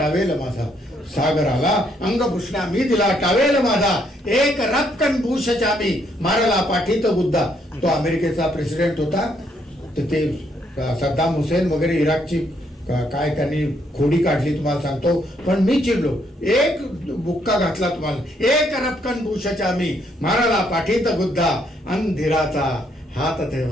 माझा, सागराला अंग पुसण्या मी दिला टावेल माझा, एक रक्कन भूषच्या मी मारला पाठीत बुद्धा. तो अमेरिकेचा प्रेसिडेंट होता, तर ते सद्दाम हुसेन वगैरे इराकची काय त्यांनी खोडी काढली तुम्हाला सांगतो, पण मी चिडलो, एक बुक्का घातला तुम्हाला, एक रपकन भूषच्या मी माराला पाठीत गुद्धा, अंधिराचा हात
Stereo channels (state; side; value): normal; both; correlation 0.72